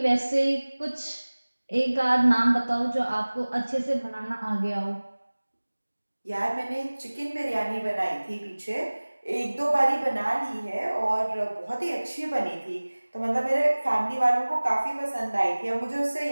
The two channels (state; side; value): inverted; both; correlation -1.00